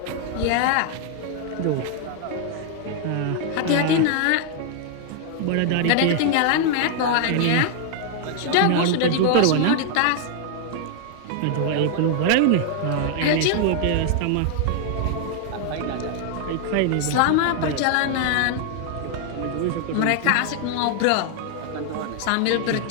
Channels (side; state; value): both; different; correlation 0.00